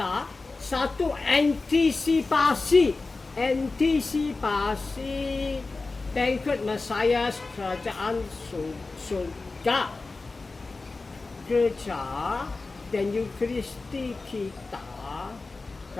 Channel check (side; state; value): right; quieter; 3.7 dB